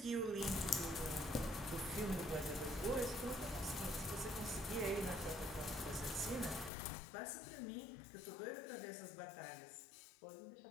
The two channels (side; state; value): right; drops out; at 6.7 s